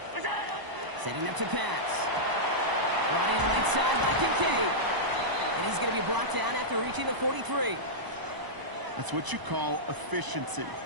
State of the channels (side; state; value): left; late; 1.0 ms